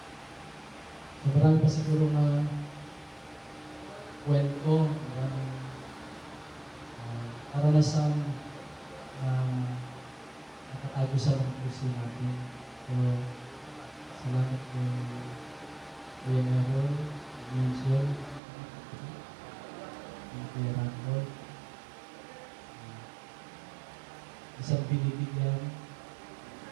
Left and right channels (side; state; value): left; drops out; at 18.4 s